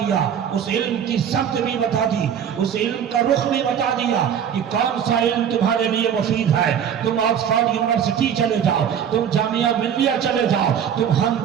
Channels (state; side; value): quieter; left; 8.5 dB